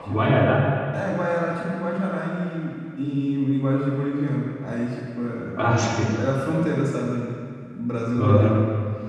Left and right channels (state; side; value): identical; both; correlation 1.00